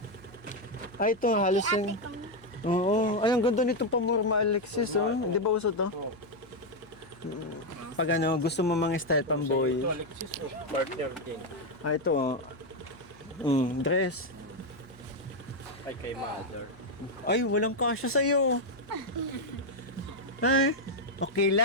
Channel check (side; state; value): left; noise; hum, 27 dB below the sound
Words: Ay, ito, halos yung... Oo. Ay, ang ganda nitong pamorma, Alexis, oh. Di ba uso to? Oh. Pag ano, gusto mo mga style pamboy. Ito, Alexis, oh, partner din. Ah, ito, oh. Dress. Ay, kay mother. Ay, walang kasya sa'yo. Ay, okay